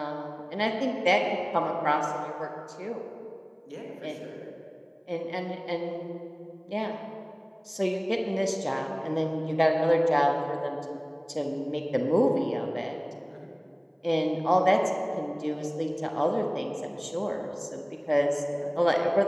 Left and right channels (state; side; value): identical; both; correlation 1.00